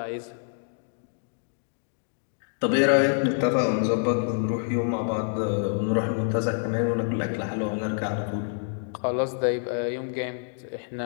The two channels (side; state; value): right; silent; digital silence